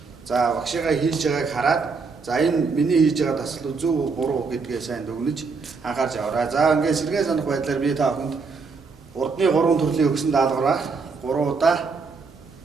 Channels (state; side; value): quieter; left; 4.7 dB